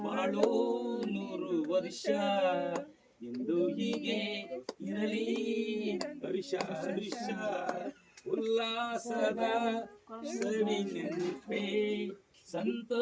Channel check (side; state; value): both; identical; correlation 1.00